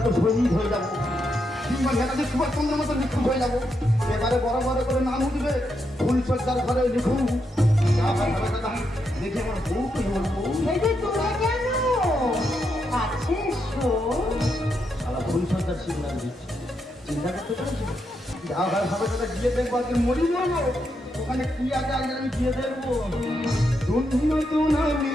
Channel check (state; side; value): normal; both; correlation 0.82